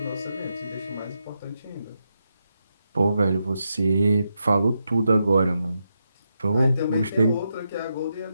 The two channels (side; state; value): both; inverted; correlation -0.85